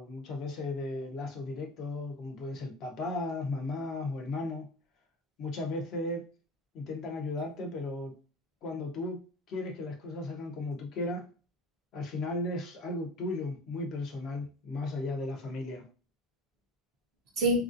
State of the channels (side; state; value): both; normal; correlation 0.32